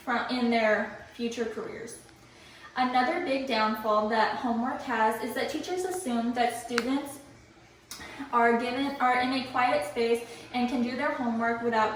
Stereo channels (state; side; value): identical; both; correlation 1.00